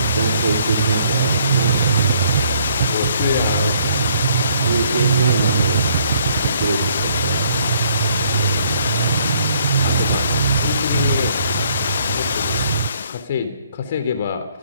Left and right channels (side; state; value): both; inverted; correlation -0.64